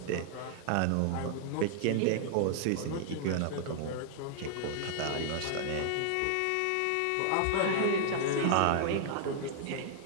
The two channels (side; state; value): both; different; correlation -0.01